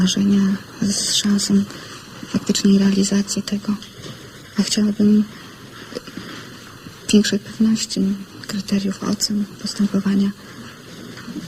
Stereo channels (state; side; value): identical; both; correlation 1.00